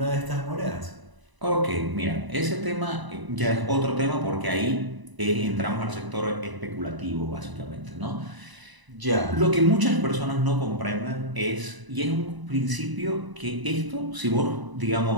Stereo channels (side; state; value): left; late; 1.0 ms